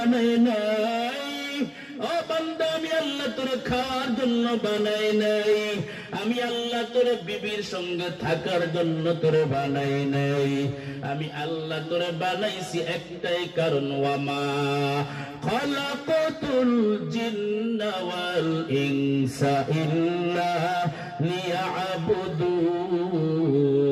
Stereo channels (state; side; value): identical; both; correlation 1.00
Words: নাই। ও বান্দা আমি আল্লাহ তোরে খাওয়ার জন্য বানাই নাই, আমি আল্লাহ তোরে বিবির সঙ্গে থাকার জন্য তোরে বানাই নাই। আমি আল্লাহ তোরে বানাইছি একটাই কারণ, ওয়ামা খালাকাতুল জিন্না ওয়াল ইনসা ইল্লা লিয়াবুদুন।